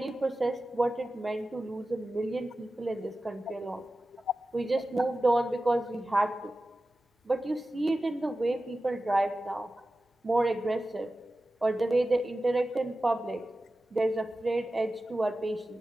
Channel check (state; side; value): normal; both; correlation 0.94